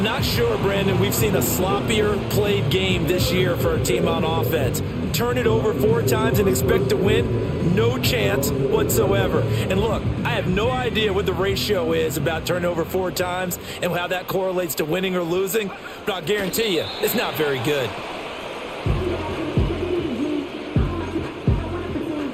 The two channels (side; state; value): both; identical; correlation 1.00